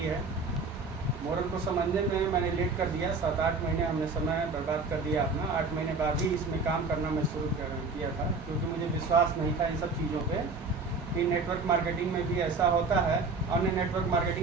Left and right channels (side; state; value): left; quieter; 4.0 dB